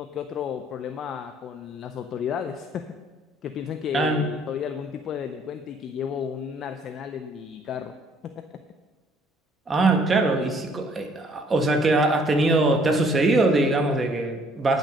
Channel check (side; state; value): both; normal; correlation 0.61